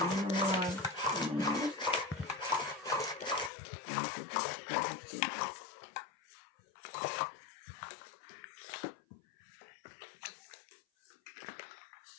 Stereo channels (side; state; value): right; drops out; at 3.5 s